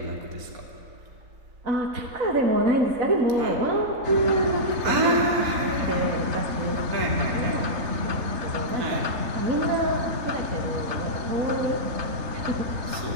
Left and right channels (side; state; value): left; late; 4.3 ms